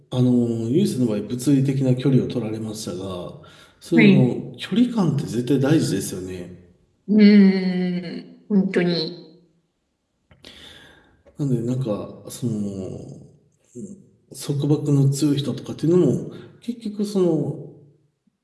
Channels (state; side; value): identical; both; correlation 1.00